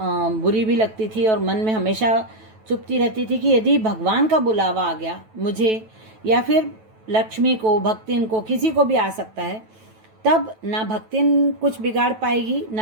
भी लगती थी और मन में हमेशा चुपती रहती थी कि यदि भगवान का बुलावा आ गया मुझे, या फिर लक्ष्मी को, भक्तिन को, किसी को भी आ सकता है, तब ना भक्तिन कुछ बिगाड़ पाएगी,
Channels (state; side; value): late; left; 9.2 ms